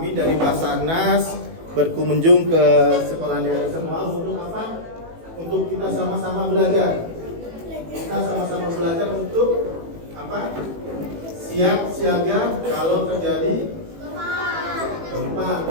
dari Basarnas berkunjung ke sekolah adik-adik semua untuk apa? Untuk kita sama-sama belajar. Kita sama-sama belajar untuk apa? Siap siaga kalau terjadi gempa,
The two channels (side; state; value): left; late; 18 ms